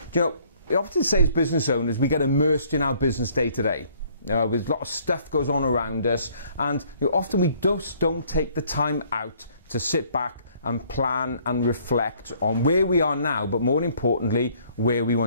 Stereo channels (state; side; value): inverted; both; correlation -0.61